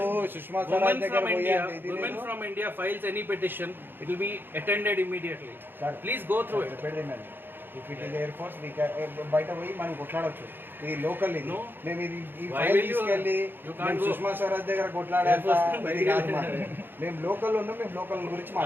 సుష్మా స్వరాజ్ దగ్గర from India files any petition, it will be attended immediately. Please go through it. If it is Air Force, we can బయట పోయి మనం కొట్లాడవచ్చు. ఇది లోకల్ ఇది మేము ఇది ఈ ఫైల్ తీసుకెళ్ళి సుష్మా స్వరాజ్ దగ్గర కొట్లాడాలి. మేము లోకల్ ఉన్నాం, మేము లోకల్ గురించి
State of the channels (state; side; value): late; left; 0.098 ms